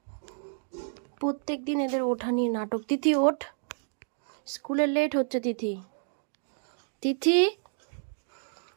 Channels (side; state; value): left; silent; digital silence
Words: প্রত্যেক দিন এদের ওঠা নিয়ে নাটক। তিথি ওঠ, স্কুলে লেট হচ্ছে। তিথি, তিথি,